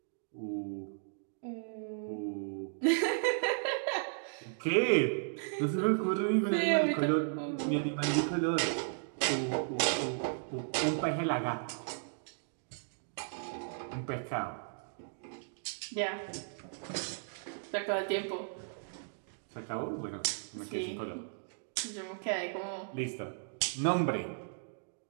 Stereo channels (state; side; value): silent; left; digital silence